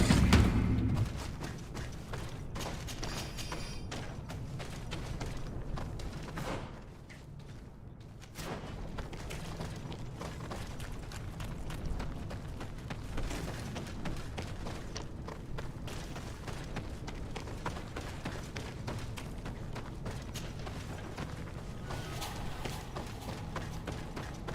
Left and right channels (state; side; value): identical; both; correlation 1.00